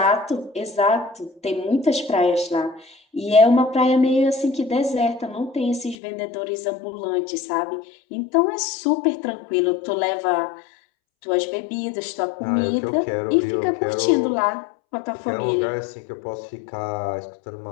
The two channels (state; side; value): drops out; right; at 6.0 s